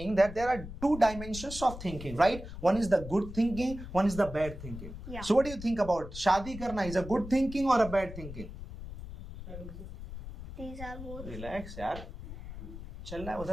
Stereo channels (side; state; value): left; noise; rumble, 11 dB below the sound